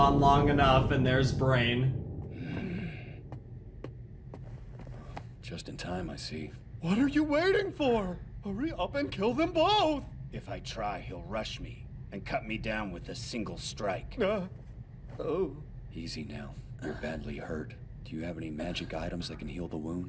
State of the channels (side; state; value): both; identical; correlation 1.00